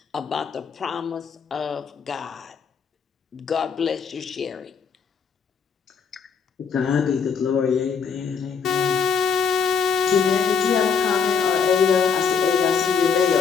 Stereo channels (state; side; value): quieter; right; 6.0 dB